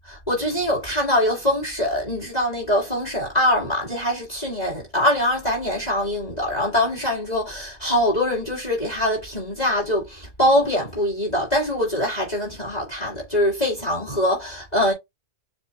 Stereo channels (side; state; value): right; late; 2.0 ms